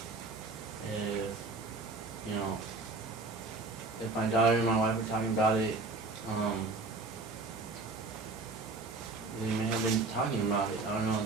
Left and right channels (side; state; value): left; quieter; 3.5 dB